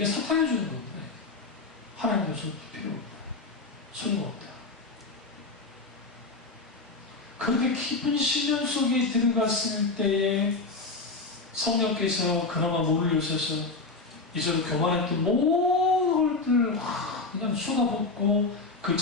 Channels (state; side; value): quieter; right; 3.7 dB